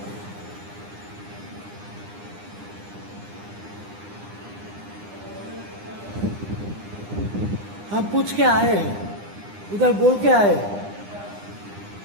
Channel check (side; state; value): left; late; 9.9 ms